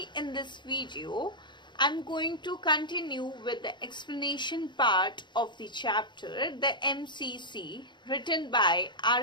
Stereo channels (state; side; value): late; right; 0.22 ms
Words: in this video I'm going to continue with the explanation part of the chapter the MCC written by